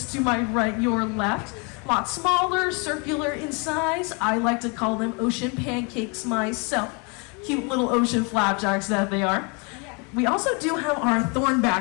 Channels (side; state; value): right; quieter; 32.7 dB